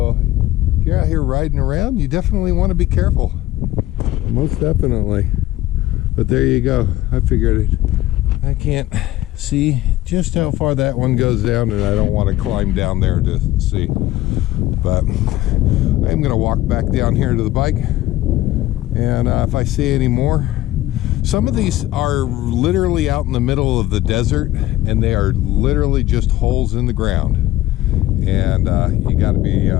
if you're out here riding around, you definitely want to be careful. Most definitely. But there you go. I figured it. I can't see just how far that one goes down, and I don't want to climb down there to see. But I'm gonna walk back down here to the bike, and if I see any more. Some of these are literally out in the middle of the desert, and they are literally just holes in the ground. And you got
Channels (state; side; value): quieter; right; 15.6 dB